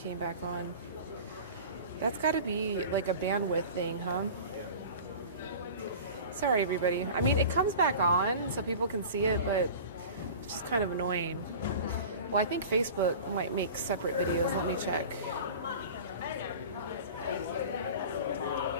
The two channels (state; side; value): inverted; both; correlation -0.37